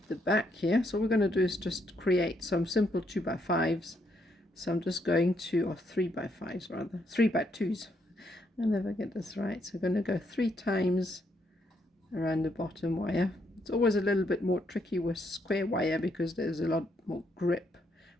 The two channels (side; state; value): both; normal; correlation 0.75